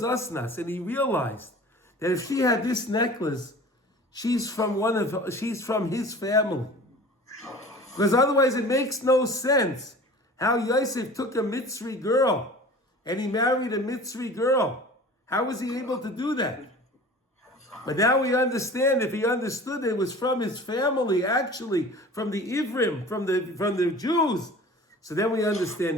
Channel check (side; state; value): both; normal; correlation 0.41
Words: Asenath, and he realized that if she had this necklace, she's from his family. Because otherwise it makes no sense how Yosef took a Mitzri girl and he married a Mitzri girl. How was he able to do that? But now we understand, if he understood it was from his family, actually, from the Ivrim, from the Jews. So then we